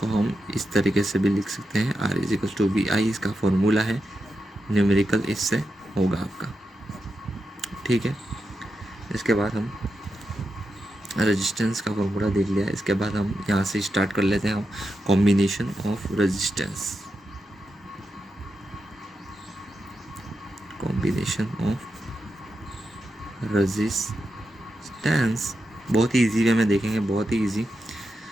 हम इस तरीके से भी लिख सकते हैं, R is equal to V I, इसका फॉर्मूला है, न्यूमेरिकल इससे होगा आपका। ठीक है, इसके बाद हम रेजिस्टेंस का फॉर्मूला देख लिया। इसके बाद हम यहाँ से स्टार्ट कर लेते हैं combination of resistance. Combination of resistance बहुत ही ईजी वे में देखेंगे, बहुत ही ईजी।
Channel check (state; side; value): normal; both; correlation 0.88